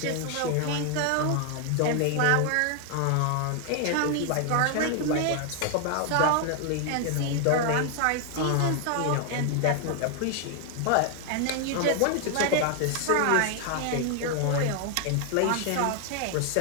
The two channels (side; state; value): both; different; correlation 0.00